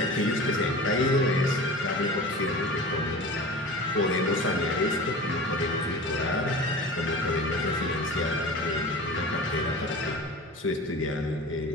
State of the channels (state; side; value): normal; both; correlation 0.35